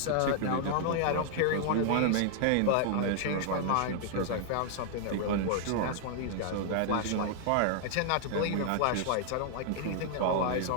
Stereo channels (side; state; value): both; different; correlation -0.01